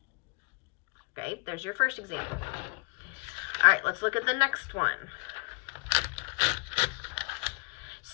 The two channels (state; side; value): quieter; right; 32.7 dB